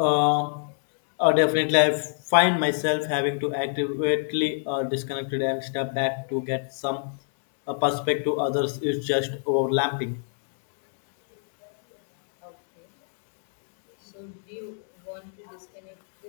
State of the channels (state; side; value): silent; right; digital silence